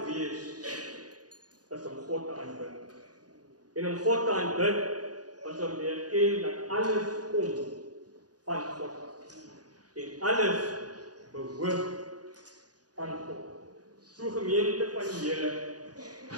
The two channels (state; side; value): late; left; 0.68 ms